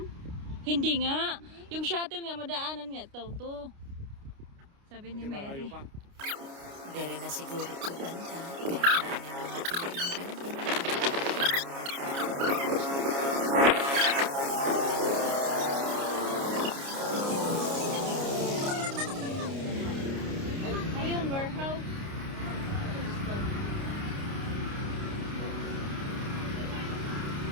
Hindi nga. Yung shuttle nga, madaanan nga. To. Sabi ni Mary. Dere na siguro ito banta. Kaya na mga building. Ayun, warehouse.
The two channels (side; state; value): left; late; 29 ms